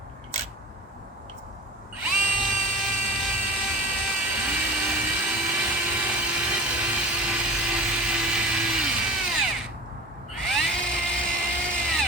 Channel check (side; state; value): both; normal; correlation 0.35